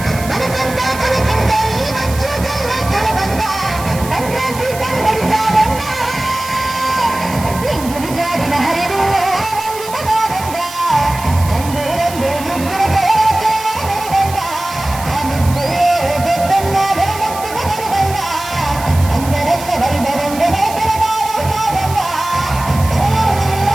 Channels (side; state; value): right; noise; hiss, 13 dB below the sound